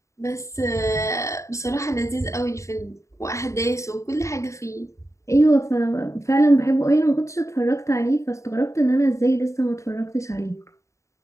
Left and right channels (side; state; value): right; late; 0.14 ms